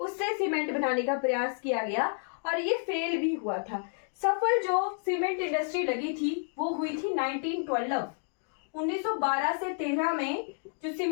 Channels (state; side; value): silent; right; 58 dB below the other